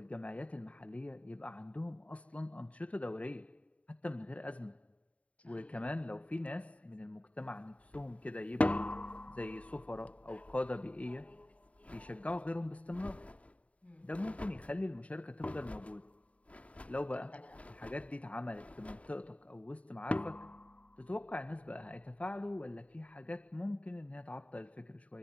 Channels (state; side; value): late; right; 0.066 ms